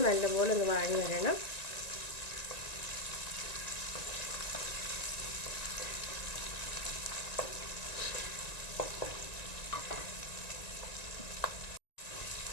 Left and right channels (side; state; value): right; late; 1.9 ms